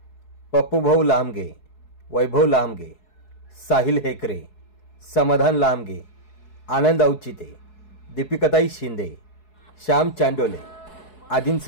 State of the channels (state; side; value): late; right; 4.7 ms